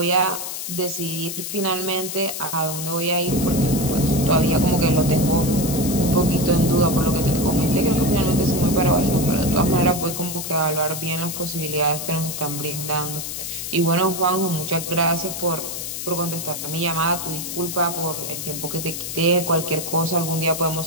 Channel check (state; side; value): noise; left; hiss, 6 dB below the sound